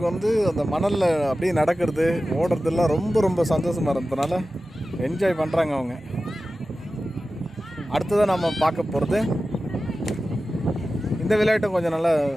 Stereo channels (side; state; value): both; normal; correlation 0.94